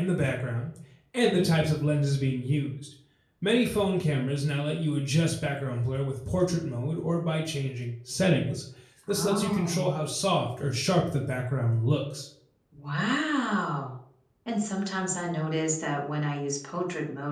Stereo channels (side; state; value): both; identical; correlation 1.00